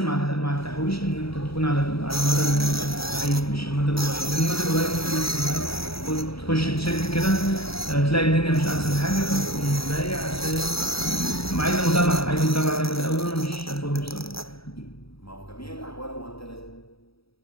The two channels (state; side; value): late; right; 0.76 ms